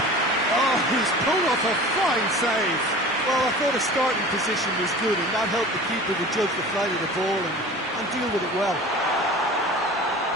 Oh, he's pulled off a fine save. Well, I thought his starting position was good, and that helped the keeper to judge the flight of the ball and deal with it well.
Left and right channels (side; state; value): both; normal; correlation 0.39